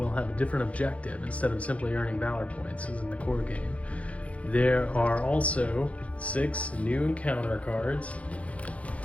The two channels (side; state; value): right; late; 0.064 ms